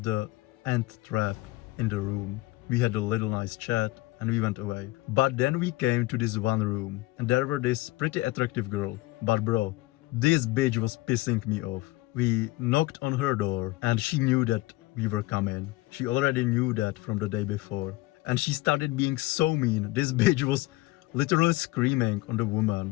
the ant trap in the room. We had a little nice chat and we went away. But then we came to this one room and there were this pretty attractive girl. But bro, this bitch was pissing me off. We knocked on her door and she knew that we were coming. She already knew that from the day before. And she started being so mean. This bitch was literally screaming on the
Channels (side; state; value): right; quieter; 19.4 dB